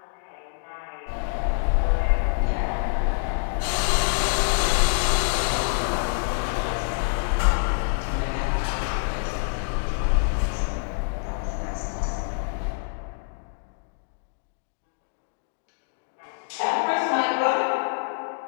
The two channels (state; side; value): silent; right; digital silence